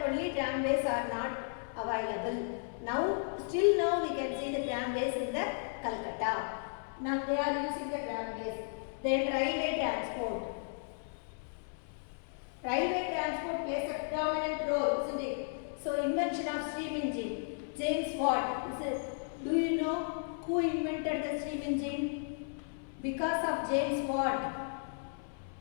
only tramways are not available. Still now we can see the tramways in the Calcutta. Now they are using the tramways. Then railway transport. Railway transport plays a predominant role, isn't it? So invention of steam engine. James Watt. Do you know who invented the steam engine? Because of James Watt,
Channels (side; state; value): right; silent; 55 dB below the other